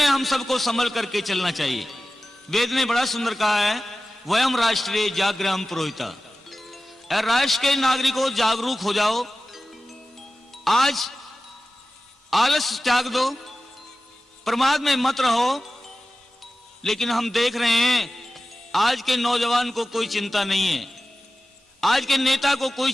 हम सबको संभल करके चलना चाहिए। वेद ने बड़ा सुंदर कहा है, वयम राष्ट्रे जागृहम पुरोहिता। राष्ट्र के नागरिकों जागरूक हो जाओ। आज आलस त्याग दो, प्रमाद में मत रहो। लेकिन हम देख रहे हैं आज के नौजवान को कोई चिंता नहीं है, आज के नेता को कोई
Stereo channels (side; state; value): both; normal; correlation 0.95